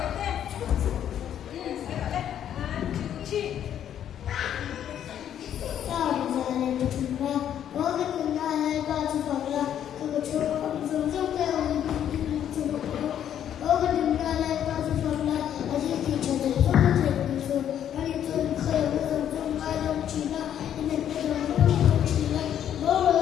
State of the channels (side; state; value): right; quieter; 10.0 dB